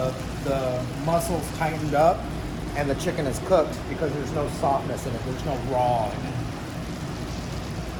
muscle's tightened up and the chicken is cooked, because there's no softness in it, there's no raw in it.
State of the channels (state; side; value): identical; both; correlation 1.00